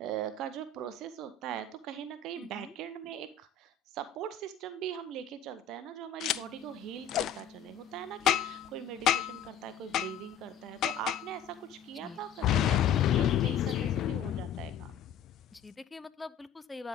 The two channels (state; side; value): quieter; right; 6.4 dB